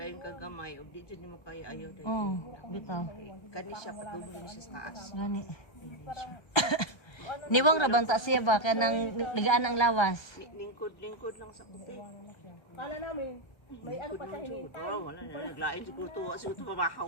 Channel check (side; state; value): right; late; 1.2 ms